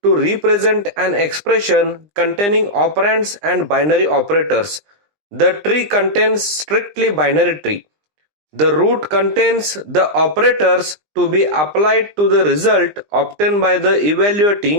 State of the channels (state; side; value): late; left; 20 ms